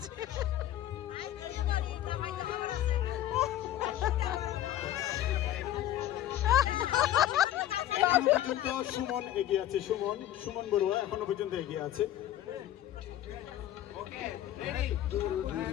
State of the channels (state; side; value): quieter; right; 12.7 dB